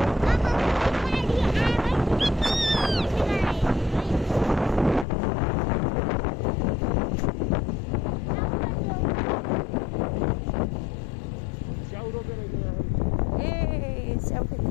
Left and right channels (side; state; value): right; drops out; at 5.1 s